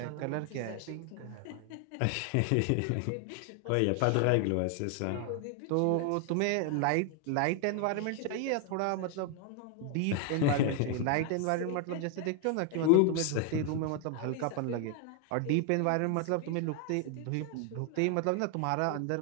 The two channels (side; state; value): both; different; correlation 0.00